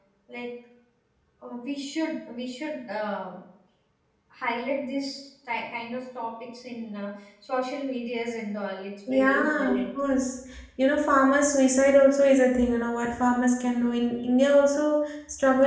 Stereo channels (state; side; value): identical; both; correlation 1.00